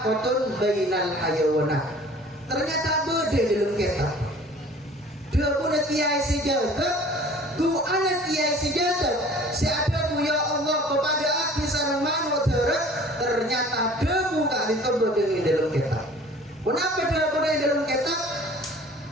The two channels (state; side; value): normal; both; correlation 0.48